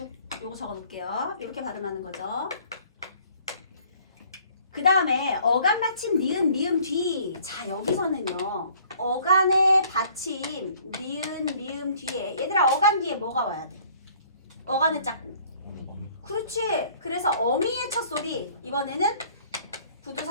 요거 적어놓을게요. 이렇게 발음하는 거죠. 그 다음에 어간 받침 니은 미음 뒤. 자 여기서는요 어간의 받침 니은 미음 뒤에 얘들아 어간 뒤에 뭐가 와야 돼? 어간의 짝꿍. 그렇지. 그래서 어미의 첫 소리 이번에는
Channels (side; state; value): both; inverted; correlation -0.56